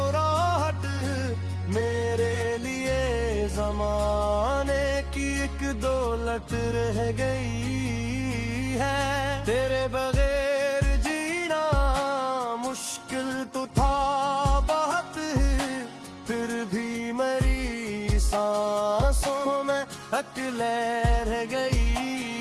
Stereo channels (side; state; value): both; identical; correlation 1.00